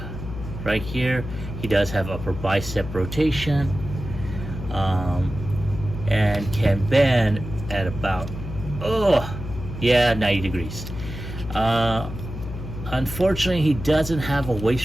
right here. He does have upper bicep rotation, and can bend at about 90 degrees. Unfortunately, he doesn't have a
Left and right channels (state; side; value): noise; left; hum, 9 dB below the sound